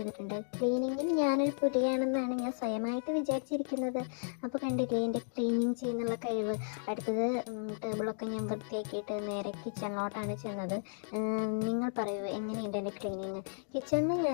ക്ലീനിങ്ങിൽ ഞാനൊരു പുലിയാണെന്നാണ് ഞാൻ സ്വയമായിട്ട് വിചാരിച്ചിരിക്കുന്നത്. അപ്പോൾ കണ്ടില്ലേ എൻ്റെ ക്ലീനിങ് ചെയ്യുന്നുള്ള കഴിവ്. അടുത്തത് ടേബിളൊക്കെ ഞാൻ വൃത്തിയാക്കിയിട്ട് നേരെ കിച്ചണിലോട്ടാണ് ചെന്നത്. നിങ്ങൾ പറയൂ, എങ്ങനെയുണ്ട് എൻ്റെ ക്ലീനിങ്? കിച്ചണിൽ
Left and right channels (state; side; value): silent; right; digital silence